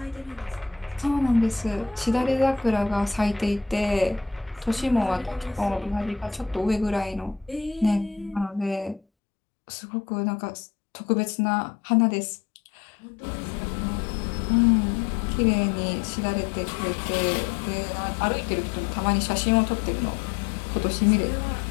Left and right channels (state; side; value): drops out; right; at 9.0 s